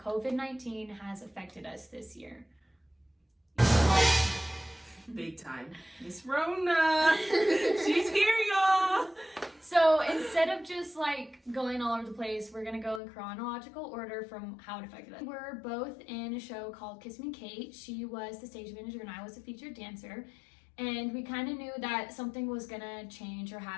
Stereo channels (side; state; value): right; drops out; at 13.0 s